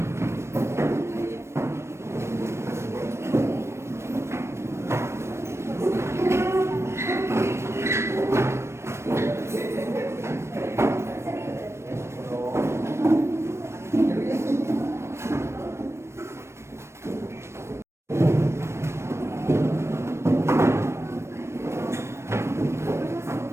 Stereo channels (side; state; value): left; late; 0.13 ms